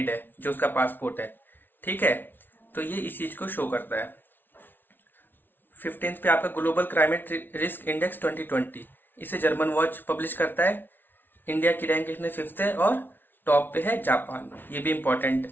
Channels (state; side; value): late; right; 0.096 ms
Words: है जो उसका पासपोर्ट है, ठीक है, तो ये इस चीज को शो करता है। 15th पे आपका ग्लोबल क्लाइमेट रिस्क इंडेक्स 2020, इसे जर्मन वॉच पब्लिश करता है। इंडिया की रैंक इसमें 5th है और टॉप पे है जापान, ये भी इंपॉर्टेंट